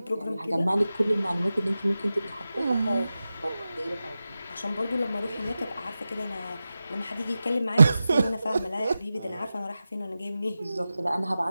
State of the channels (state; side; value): inverted; both; correlation -0.94